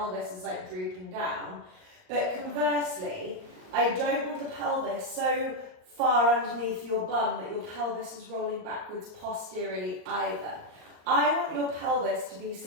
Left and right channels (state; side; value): late; left; 39 ms